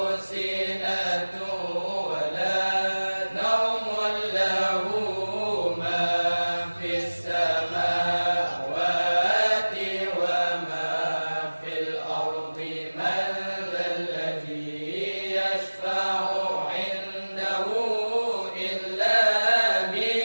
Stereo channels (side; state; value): both; inverted; correlation -1.00